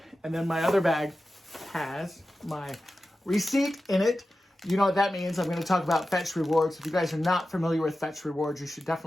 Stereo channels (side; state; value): both; normal; correlation 0.93